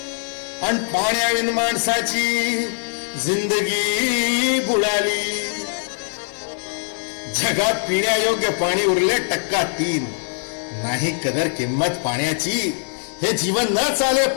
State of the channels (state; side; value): silent; right; digital silence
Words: आणि पाण्याविन माणसाची जिंदगी बुडाली. जगात पिण्यायोग्य पाणी उरले 3%. नाही कदर किंमत पाण्याची. हे जीवन न चाले